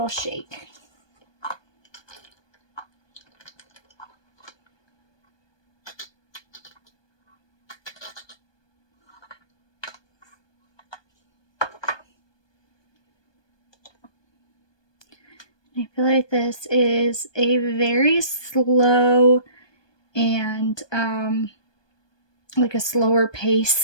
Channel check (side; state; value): right; late; 1.2 ms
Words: shake. I feel like this is a very slow and like a slower